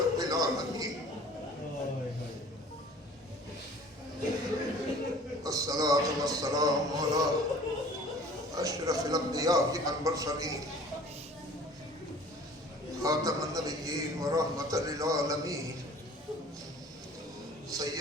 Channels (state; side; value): normal; both; correlation 0.48